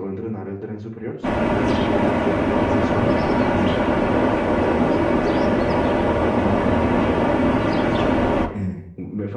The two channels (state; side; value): identical; both; correlation 1.00